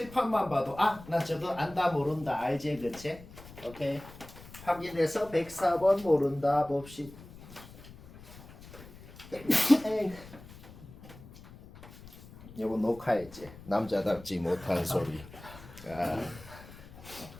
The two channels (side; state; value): left; noise; rumble, 18 dB below the sound